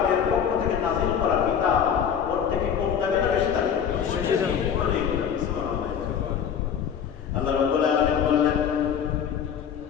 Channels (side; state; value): right; quieter; 8.0 dB